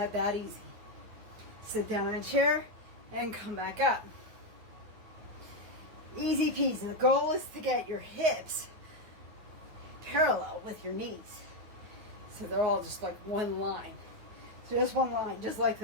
easy. Sit down in a chair and come back up. Easy peasy. The goal is to get your hips parallel with your knees. So they're all just like one line. So just one line, just like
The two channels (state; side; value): late; left; 9.3 ms